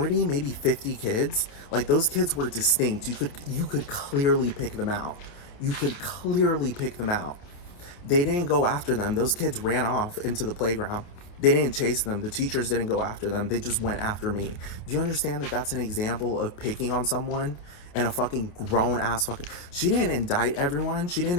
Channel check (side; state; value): right; late; 28 ms